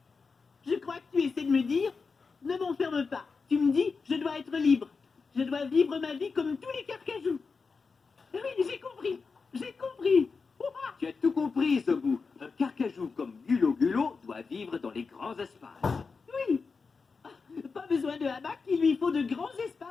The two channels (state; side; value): quieter; right; 4.8 dB